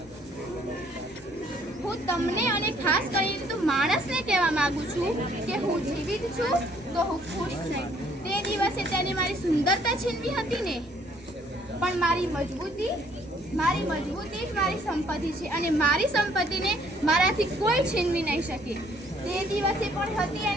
હું તમને અને ખાસ કરીને તો માણસને કહેવા માંગુ છું કે હું જીવિત છું તો હું ખુશ છું. તે દિવસે તેને મારી સુંદરતા છીનવી હતી ને, પણ મારી મજબૂતી જ મારી સંપત્તિ છે અને મારી સંપત્તિને મારાથી કોઈ છીનવી નહીં શકે. તે દિવસે પણ હતી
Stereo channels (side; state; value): both; normal; correlation 0.63